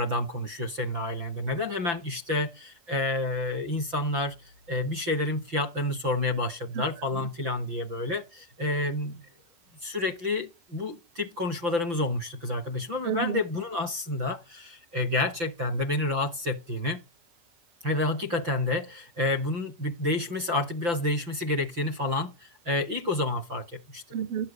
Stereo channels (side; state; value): left; late; 5.9 ms